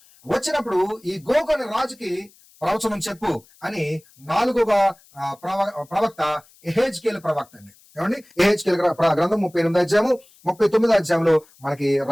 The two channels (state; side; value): noise; left; hiss, 28 dB below the sound